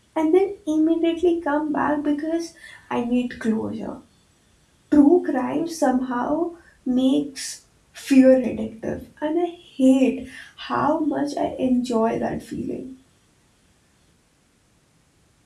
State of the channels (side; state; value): both; identical; correlation 1.00